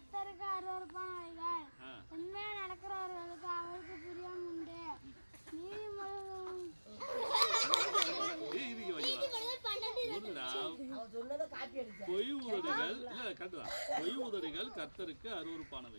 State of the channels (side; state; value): both; inverted; correlation -1.00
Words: அருவருப்பானவைகள், உண்மையா நடக்கிறவர்களுக்கு அவருக்கு பிரியம் உண்டு. பொய் உதடுகள் கர்த்தருக்கு